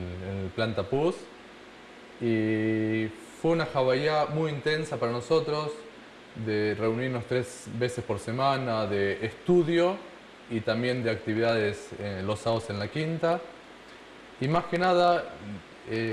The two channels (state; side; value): identical; both; correlation 1.00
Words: el plan Tapuz. Y fue una jabayá muy intensa para nosotros, de reunirnos 3 veces por semana, de estudio y también de actividades los sábados en la quinta. Y más que nada,